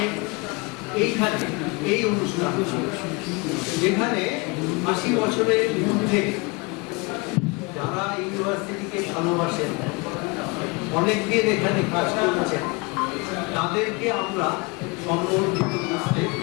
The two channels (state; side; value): quieter; right; 27.8 dB